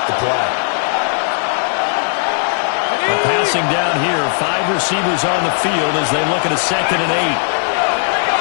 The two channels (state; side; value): silent; right; digital silence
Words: the play. Passing down here, 5 receivers on the field as they look at a 2nd and 8.